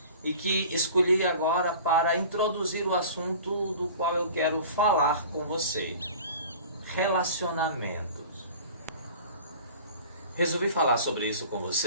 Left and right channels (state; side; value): inverted; both; correlation -0.41